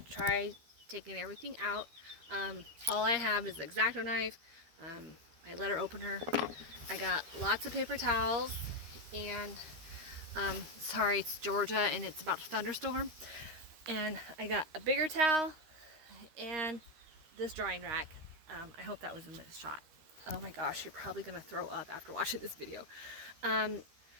taking everything out. All I have is the X-Acto knife, my letter opener. I got lots of paper towels, and sorry, it's Georgia and it's about to thunderstorm. And I got a bigger towel and this drying rack. I hope that was in this shot. Oh my gosh, you're probably gonna throw up after watching this video. Um,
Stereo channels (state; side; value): late; left; 13 ms